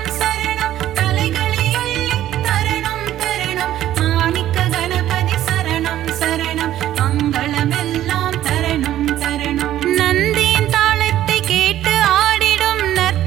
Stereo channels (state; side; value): quieter; left; 12.8 dB